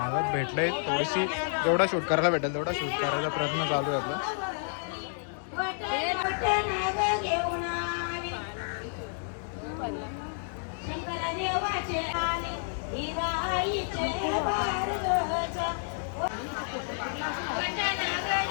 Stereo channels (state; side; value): silent; right; digital silence